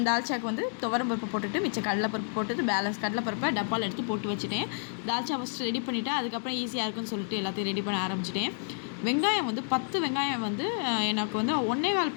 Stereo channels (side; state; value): right; silent; digital silence